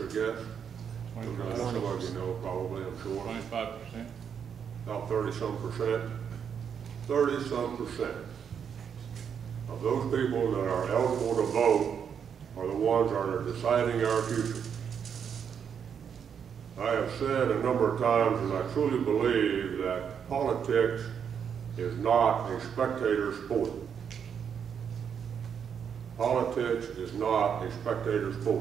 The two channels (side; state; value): left; quieter; 7.5 dB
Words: a guess? Some of you know probably, I'm sure. 25%. About 30-some%. 30-some% of those people that are eligible to vote are the ones that are deciding our future. I have said a number of times, and I truly believe that politics is not a spectator sport. Politics is not a spectator